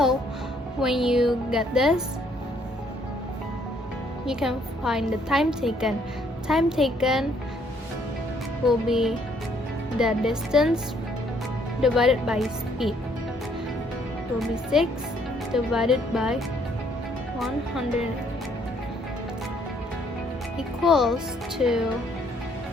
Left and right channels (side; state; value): both; normal; correlation 0.66